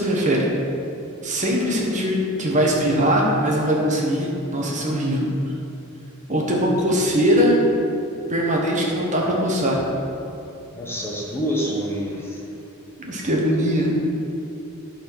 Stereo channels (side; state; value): both; normal; correlation 0.35